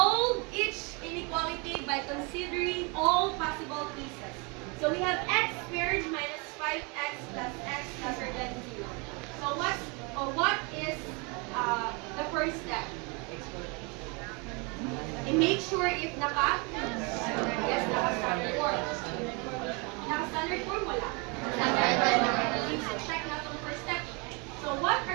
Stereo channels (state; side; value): quieter; left; 30.9 dB